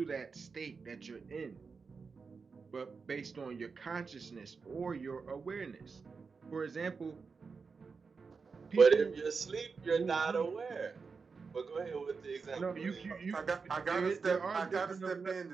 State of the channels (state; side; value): quieter; left; 5.0 dB